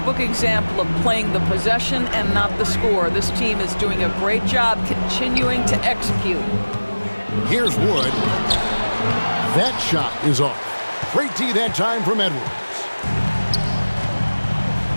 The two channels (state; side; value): inverted; both; correlation -1.00